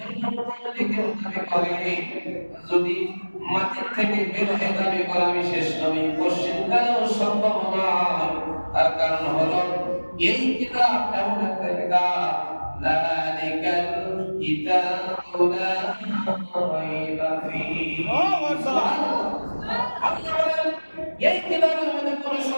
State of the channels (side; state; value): both; inverted; correlation -1.00